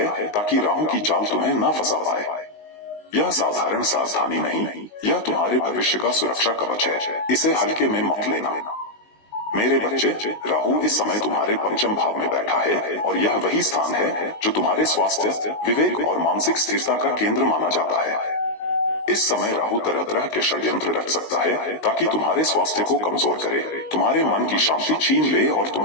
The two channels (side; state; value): right; late; 19 ms